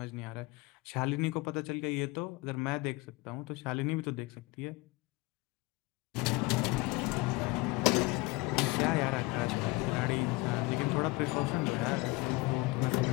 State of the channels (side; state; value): right; quieter; 23.6 dB